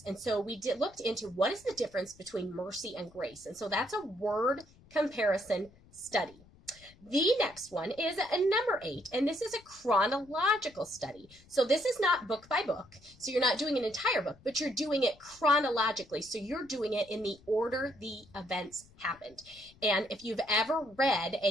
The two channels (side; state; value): left; noise; rumble, 26 dB below the sound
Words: And so we looked into what is the difference between mercy and grace. And so that's a word comparison study. The next one is number 8, and this is a chronological study. So this is not book by book, so you're not doing an entire book, but you're doing it chronologically. So you're doing it in the order the events happened. And if you've ever read